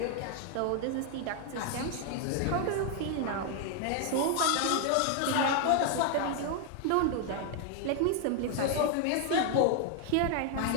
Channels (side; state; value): both; different; correlation 0.00